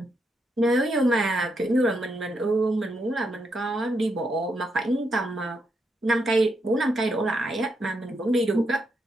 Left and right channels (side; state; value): both; normal; correlation 0.80